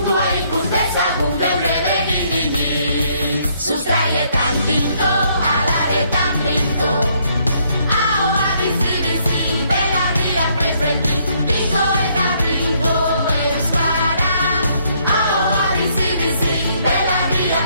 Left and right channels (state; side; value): inverted; both; correlation -0.69